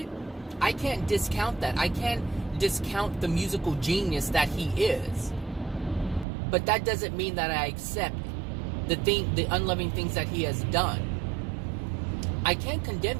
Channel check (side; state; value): left; drops out; at 6.2 s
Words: I can't discount that. I can't discount the musical genius that he is. But that doesn't mean that I accept the unloving things that he has done. I can't condemn